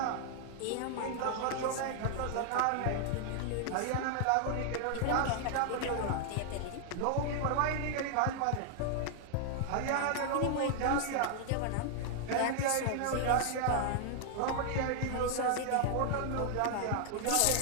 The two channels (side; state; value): both; different; correlation 0.00